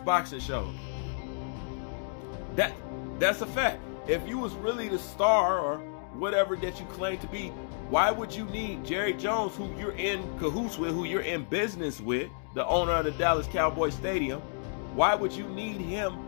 show. That's a fact. If you was really the star or whatever that you claim to be, why would you need Jerry Jones, who you're in cahoots with, who you're in business with, the owner of the Dallas Cowboys Stadium? Why would you need him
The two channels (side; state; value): right; silent; digital silence